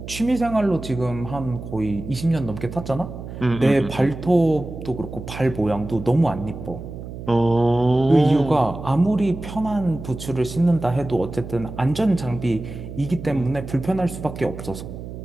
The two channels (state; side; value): noise; right; hum, 10 dB below the sound